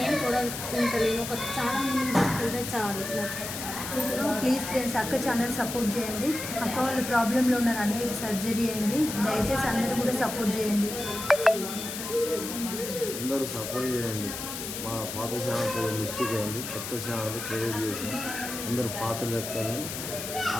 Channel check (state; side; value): noise; left; hiss, 7 dB below the sound